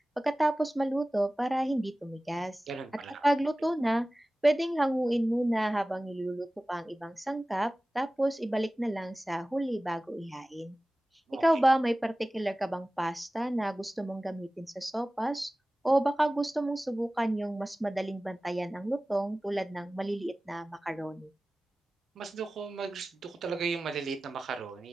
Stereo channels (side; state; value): both; normal; correlation 0.97